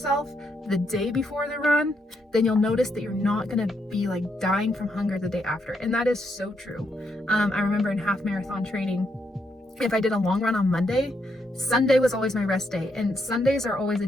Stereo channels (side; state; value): both; normal; correlation 0.78